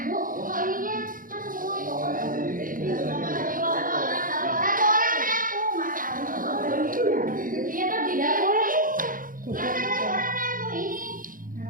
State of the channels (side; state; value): left; late; 0.40 ms